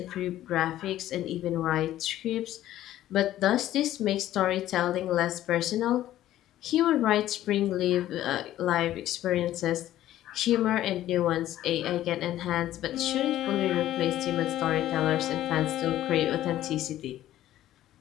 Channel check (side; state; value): right; quieter; 13.4 dB